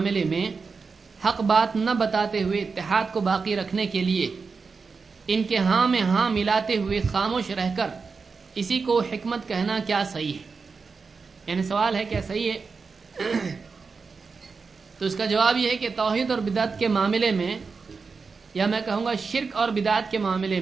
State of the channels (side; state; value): left; quieter; 4.8 dB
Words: میں حق بات نہ بتاتے ہوئے اتحاد کو باقی رکھنے کے لیے ان کے ہاں میں ہاں ملاتے ہوئے خاموش رہ کر اسی کو حکمت کہنا کیا صحیح ہے؟ یعنی سوال ہے کیا صحیح ہے؟ تو اس کا جواب یہ ہے کہ توحید اور بدعت کے معاملے میں، یا میں کہوں گا شرک اور بدعت کے معاملے